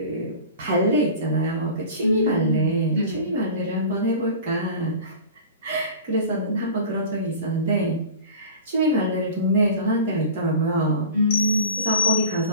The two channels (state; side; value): inverted; both; correlation -0.38